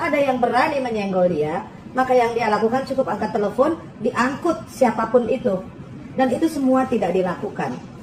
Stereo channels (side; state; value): both; identical; correlation 1.00